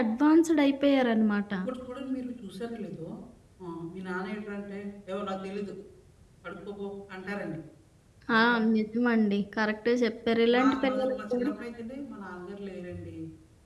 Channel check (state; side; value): identical; both; correlation 1.00